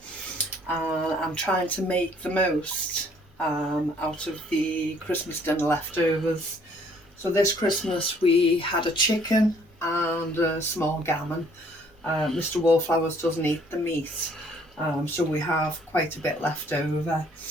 and I'm trying to make the most out of the Christmas dinner leftovers. So this Christmas we had a chicken and a small gammon. Mr. Wallflowers doesn't eat the meat, so we have quite a bit left over.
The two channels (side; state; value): both; normal; correlation 0.61